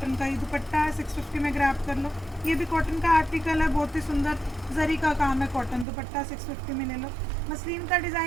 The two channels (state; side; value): drops out; left; at 5.9 s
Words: का ही दुपट्टा है, 650 में ग्रैब कर लो। ये भी कॉटन का आर्टिकल है, बहुत ही सुंदर, जरी का काम है, कॉटन दुपट्टा 650 में ले लो। मसलिन का